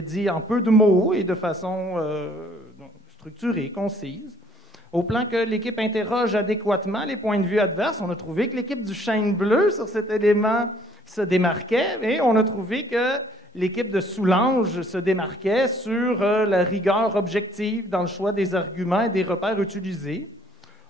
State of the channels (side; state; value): both; normal; correlation 0.60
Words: dits en peu de mots et de façon structurée, concise. Au plan que l'équipe interroge adéquatement les points de vue adverses, on a trouvé que l'équipe du Chêne Bleu sur cet élément se démarquait et on a trouvé que l'équipe de Soulanges se démarquait sur la rigueur objective dans le choix des arguments et des repères utilisés.